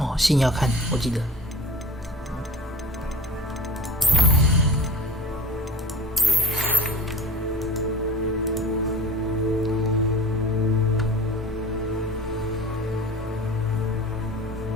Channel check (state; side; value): normal; both; correlation 0.39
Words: 信要看，我记得。